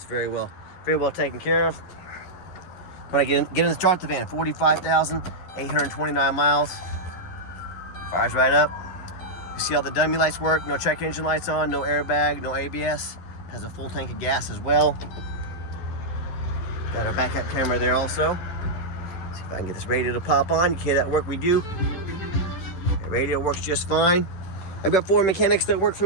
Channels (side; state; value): right; late; 11 ms